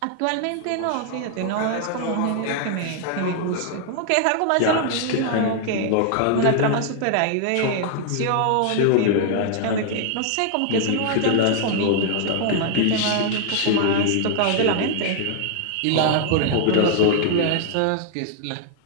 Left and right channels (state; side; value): different; both; correlation 0.00